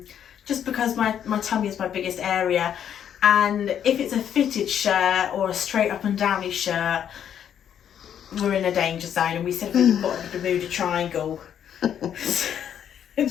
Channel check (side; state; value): right; quieter; 9.2 dB